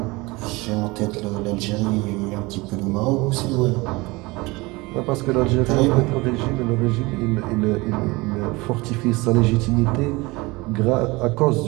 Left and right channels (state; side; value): quieter; left; 23.3 dB